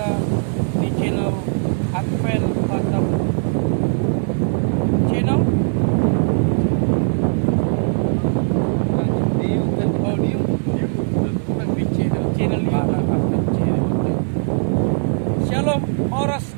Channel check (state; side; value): silent; left; digital silence